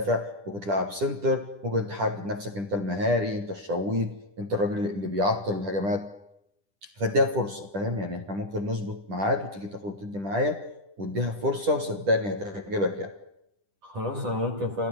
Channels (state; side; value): late; left; 10 ms